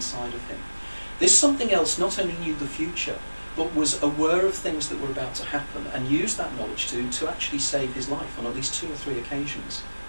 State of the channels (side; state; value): both; inverted; correlation -1.00